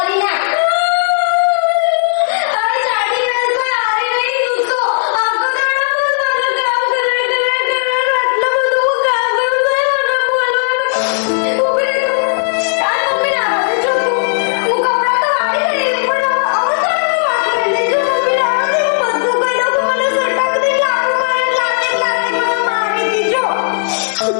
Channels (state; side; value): silent; right; digital silence